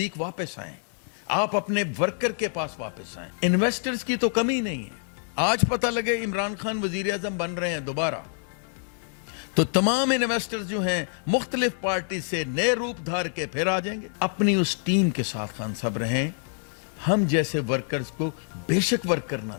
واپس آئیں, آپ اپنے ورکر کے پاس واپس آئیں. انویسٹرز کی تو کمی نہیں ہے. آج پتہ لگے عمران خان وزیر اعظم بن رہے ہیں دوبارہ, تو تمام انویسٹرز جو ہیں مختلف پارٹی سے نئے روپ دھار کے پھر آ جائیں گے. اپنی اس ٹیم کے ساتھ خان صاحب رہیں. ہم جیسے ورکرز کو بے شک ورکر نہ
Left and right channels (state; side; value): silent; right; 58 dB below the other